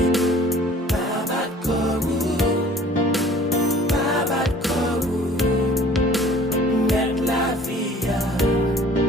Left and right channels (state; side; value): normal; both; correlation 0.51